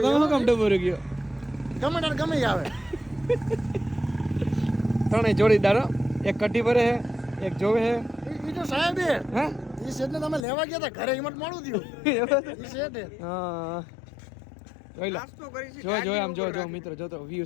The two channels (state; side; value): drops out; right; at 10.5 s